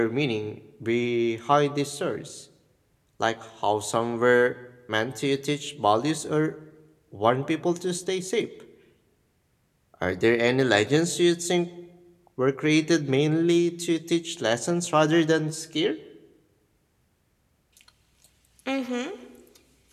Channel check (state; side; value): identical; both; correlation 1.00